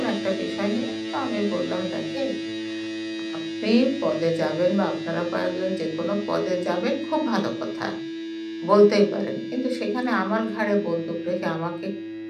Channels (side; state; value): both; identical; correlation 1.00